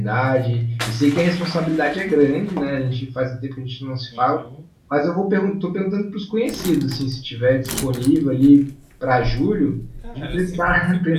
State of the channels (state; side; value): identical; both; correlation 1.00